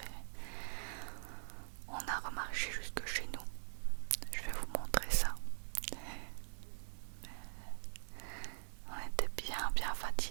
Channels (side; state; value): left; silent; digital silence